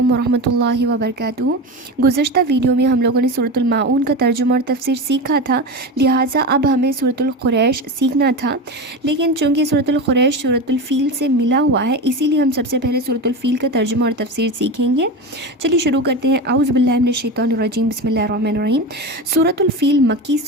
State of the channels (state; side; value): normal; both; correlation 0.23